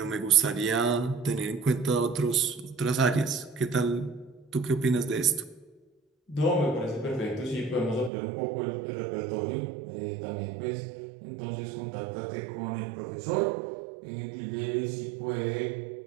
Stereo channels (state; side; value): drops out; left; at 8.1 s